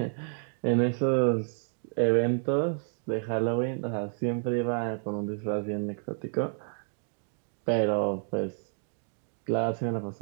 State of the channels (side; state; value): left; silent; digital silence